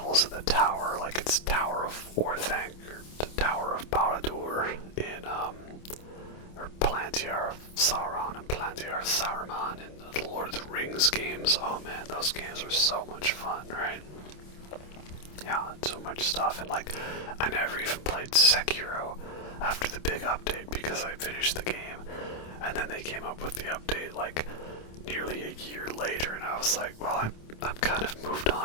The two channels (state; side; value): late; right; 27 ms